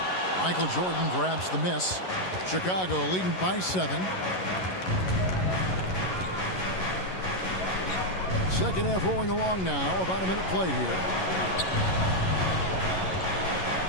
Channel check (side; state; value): right; late; 11 ms